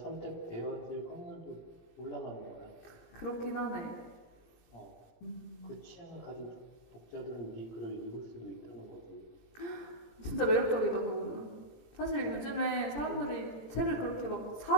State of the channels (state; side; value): late; right; 17 ms